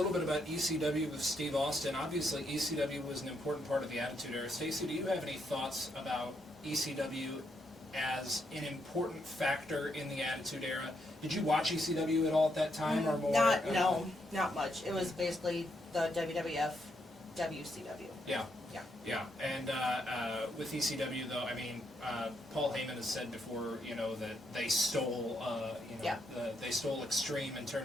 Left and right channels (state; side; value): normal; both; correlation 0.78